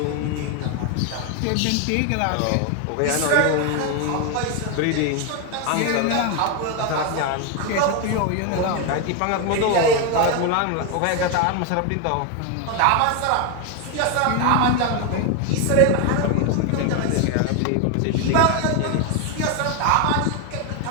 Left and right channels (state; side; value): different; both; correlation 0.01